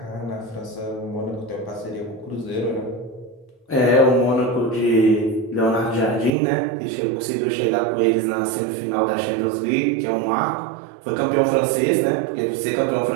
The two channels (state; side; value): drops out; left; at 6.3 s